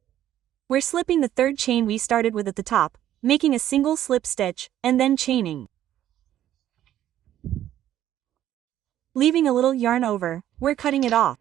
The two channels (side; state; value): left; quieter; 12.0 dB